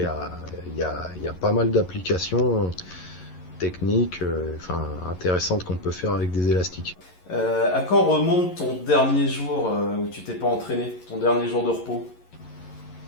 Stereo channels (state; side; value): late; right; 11 ms